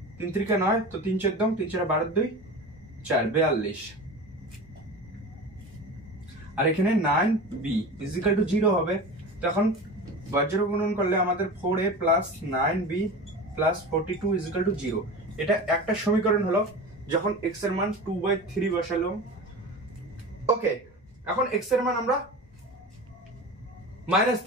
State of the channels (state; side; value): normal; both; correlation 0.31